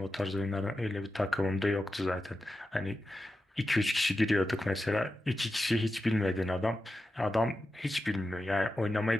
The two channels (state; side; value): normal; both; correlation 0.90